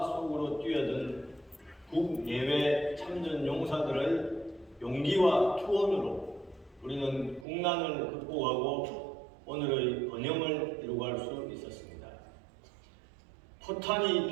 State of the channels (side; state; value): left; drops out; at 7.5 s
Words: 속으로 뛰어든 국내외 참전용사들의 용기와 투혼으로 우리는 국난을 극복하고 오늘의 번영을 이루어갈 수 있었습니다. 포탄이